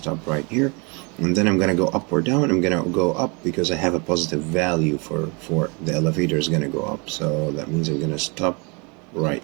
right here. And then I'm going to go up or down. I'm going to go up because I have a positive value for the elevator is going to go up. So that means I'm going to stop right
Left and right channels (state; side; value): quieter; left; 31.1 dB